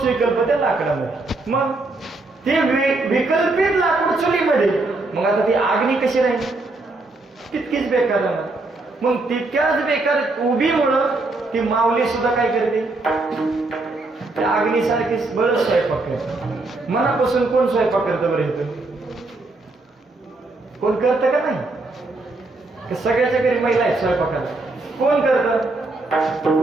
विकल्प त्या लाकडामध्ये. मग ते विकल्पित लाकूड चुलीमध्ये, मग आता ती आग्नी कशी राहील? तितकीच बेकार राहणार. मग तितक्याच बेकार उभीमुळं ती माऊली सुद्धा काय करते, त्या अग्नीसारखी बरंच स्वयंपाक करते. मनापासून कोण स्वयंपाक करतं बरं इथं? कोण करतं का नाही? सगळ्याच्या घरी महिला आहेत स्वयंपाकाला. कोण करतं?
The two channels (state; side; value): quieter; left; 3.2 dB